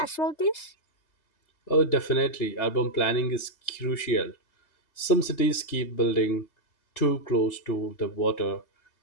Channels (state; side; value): late; right; 3.3 ms